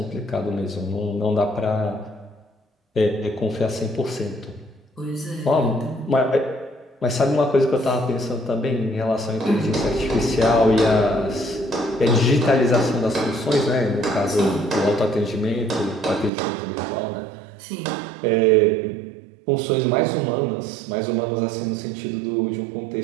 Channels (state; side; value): drops out; left; at 16.3 s